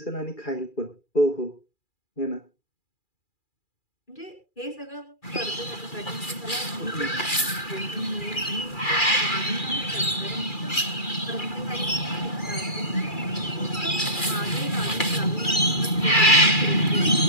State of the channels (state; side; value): late; right; 2.4 ms